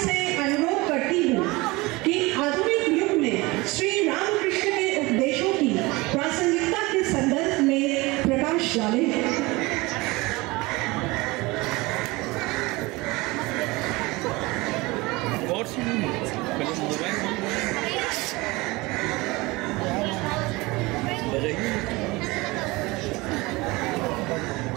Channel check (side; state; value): left; quieter; 22.7 dB